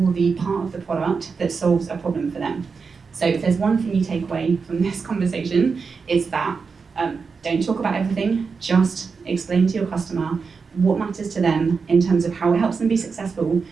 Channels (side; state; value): left; quieter; 5.1 dB